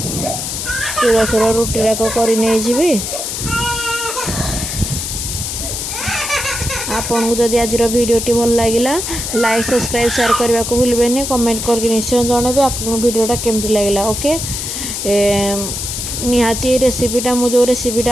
शीघ्र शीघ्र रुटी राक करी नहीं जीवी आपन को जदि आज वीडियोटी भल लगिला लाइक सब्सक्राइब शेयर करने को भूलबेनी कमेंट करके निश्चय जनइबे आपन वीडियोटा केमती लगिला ओके निहाती रेसिपीटा मु जो रेसिपीटा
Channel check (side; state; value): left; noise; hiss, 4 dB below the sound